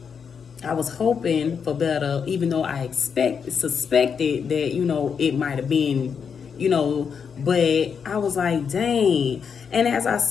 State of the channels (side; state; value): right; quieter; 6.6 dB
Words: I was hoping for better, even though I suspected that, it might have been, but I was like, dang. And as I